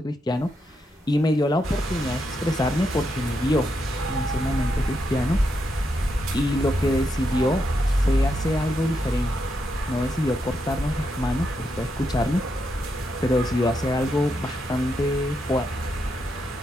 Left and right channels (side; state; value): both; normal; correlation 0.82